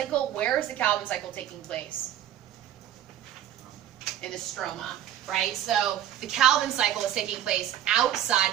where is the Calvin cycle taking place? In the stroma, right? So the Calvin cycle is taking place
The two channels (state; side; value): quieter; left; 11.6 dB